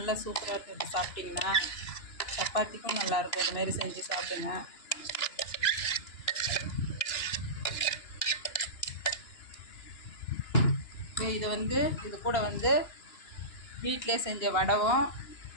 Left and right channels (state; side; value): late; right; 2.9 ms